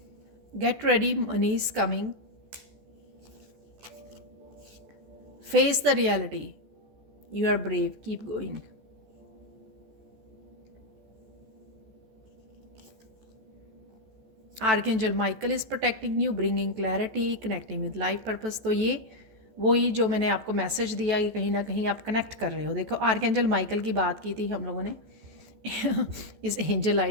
Get ready, money is coming, face the reality, you are brave, keep going. Archangel Michael is protecting you, bringing clarity, connecting with life purpose. तो ये वही जो मैंने आपको मैसेज दिया कि कहीं ना कहीं आप कनेक्ट कर रहे हो। देखो, आर्कएंजल माइकल की बात की थी हम लोगों ने इस एंजल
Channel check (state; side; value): late; left; 14 ms